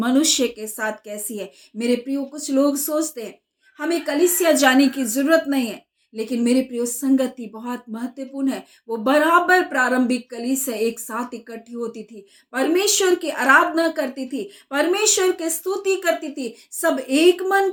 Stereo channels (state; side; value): identical; both; correlation 1.00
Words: के साथ कैसी है। मेरे प्रियो, कुछ लोग सोचते हैं हमें कलीसिया जाने की जरूरत नहीं है, लेकिन मेरे प्रियो, संगति बहुत महत्वपूर्ण है। वो बराबर प्रारंभिक कलीसिया एक साथ इकट्ठी होती थी, परमेश्वर की आराधना करती थी, परमेश्वर की स्तुति करती थी, सब एक मन